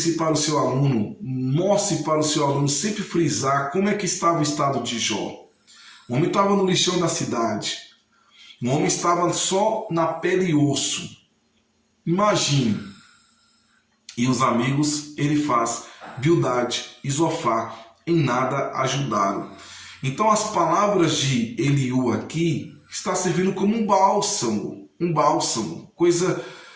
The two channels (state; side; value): identical; both; correlation 1.00